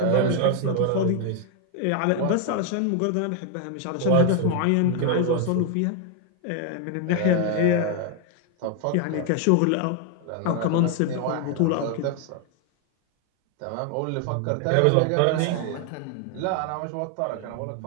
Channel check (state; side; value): different; both; correlation 0.00